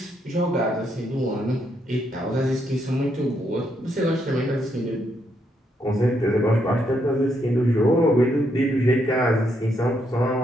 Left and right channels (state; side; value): normal; both; correlation 0.76